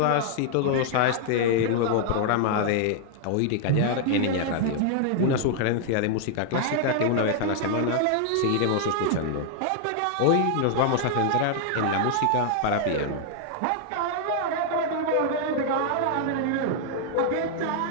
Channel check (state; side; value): different; both; correlation 0.00